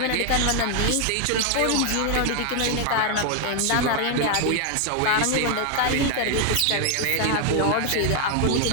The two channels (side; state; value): both; different; correlation 0.01